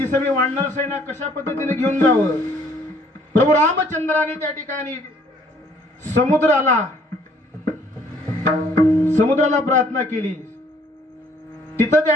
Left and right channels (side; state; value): both; normal; correlation 0.61